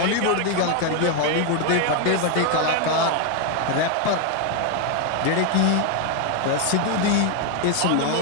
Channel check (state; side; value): different; both; correlation 0.01